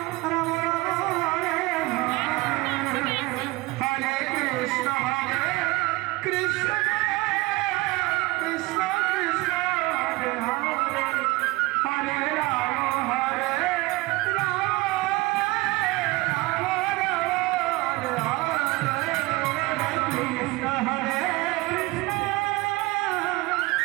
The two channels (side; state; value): left; quieter; 21.4 dB